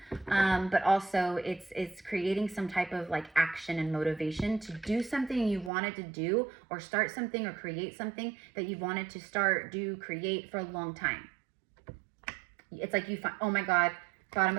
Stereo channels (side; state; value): left; drops out; at 5.7 s